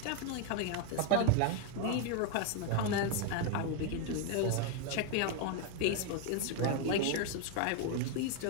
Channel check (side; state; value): both; different; correlation 0.01